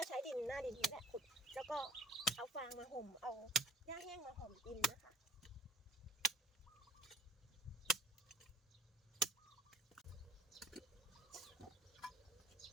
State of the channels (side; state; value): both; normal; correlation 0.51